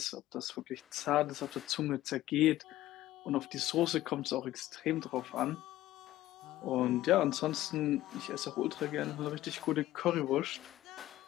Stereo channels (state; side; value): quieter; right; 15.1 dB